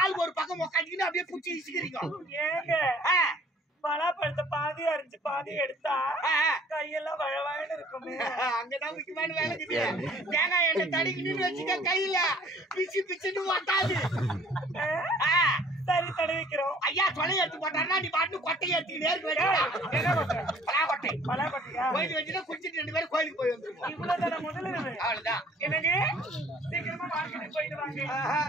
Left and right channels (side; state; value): both; normal; correlation 0.55